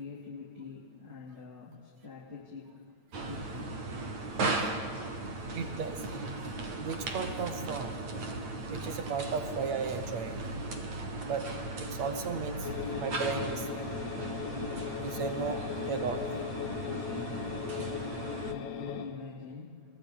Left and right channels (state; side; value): late; left; 8.7 ms